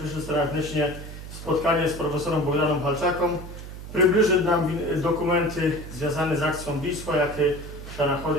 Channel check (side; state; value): right; noise; hum, 11 dB below the sound